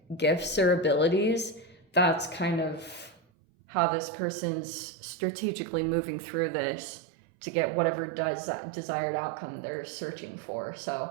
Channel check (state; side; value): drops out; left; at 3.2 s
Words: gifts or abilities. That's kind of how this person's strategically moving through this to get whatever desired outcome they're searching for.